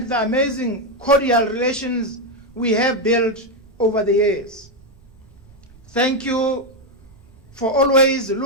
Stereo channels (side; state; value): right; noise; rumble, 26 dB below the sound